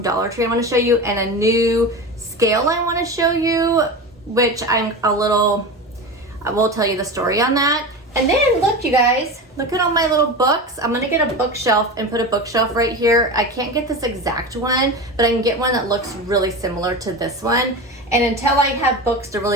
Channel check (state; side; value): normal; both; correlation 0.26